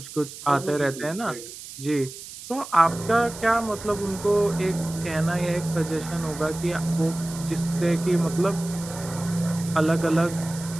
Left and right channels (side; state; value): right; noise; hiss, 13 dB below the sound